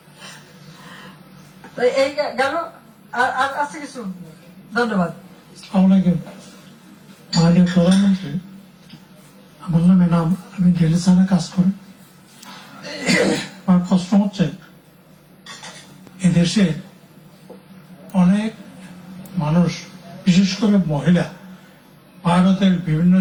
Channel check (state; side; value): identical; both; correlation 1.00